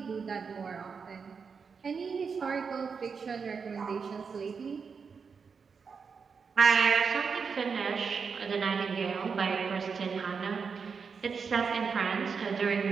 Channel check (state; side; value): quieter; left; 5.6 dB